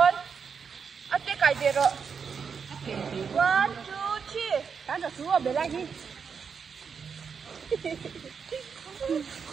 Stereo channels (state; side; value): quieter; left; 6.2 dB